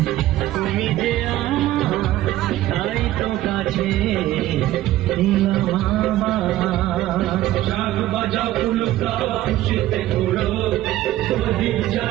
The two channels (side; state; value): left; quieter; 14.8 dB